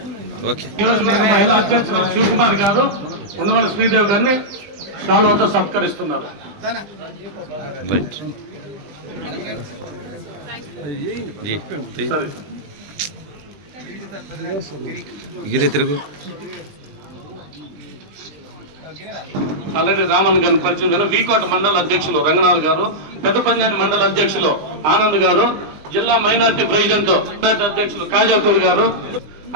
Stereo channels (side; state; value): left; late; 20 ms